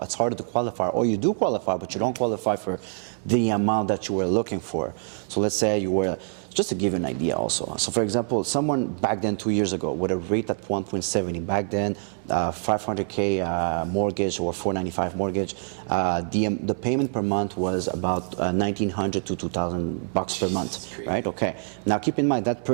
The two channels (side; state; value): left; silent; 61 dB below the other